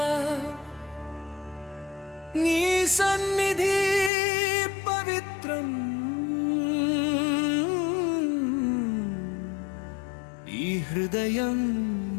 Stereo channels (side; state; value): right; drops out; at 4.1 s